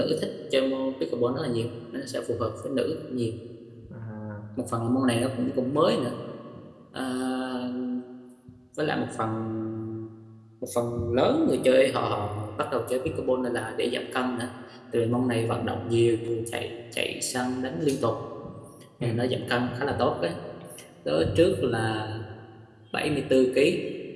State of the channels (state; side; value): identical; both; correlation 1.00